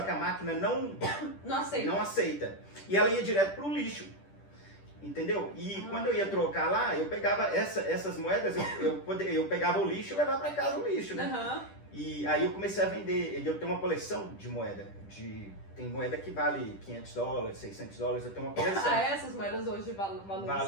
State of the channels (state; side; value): late; right; 10 ms